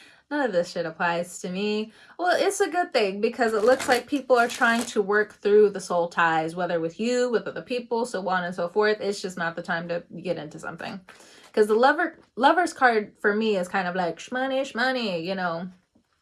none of this shit applies to me. Well, it's a good thing because it looks like people are trying to work through the soul ties, whether with you, with other people, so on and so forth. It's just not the time to get into something. Because the lover's card for me is kind of like shmoney, you know,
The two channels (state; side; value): identical; both; correlation 1.00